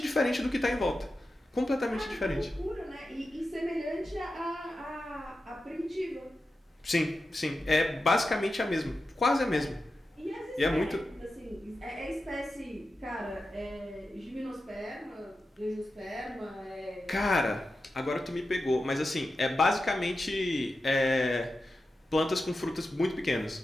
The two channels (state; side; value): normal; both; correlation 0.91